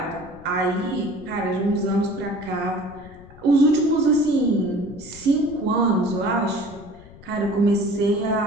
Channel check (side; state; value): left; noise; rumble, 20 dB below the sound